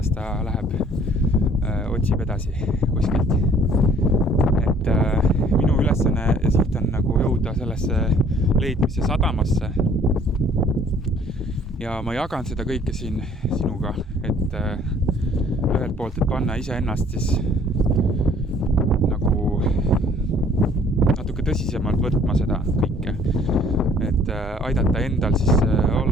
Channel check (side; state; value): both; normal; correlation 0.57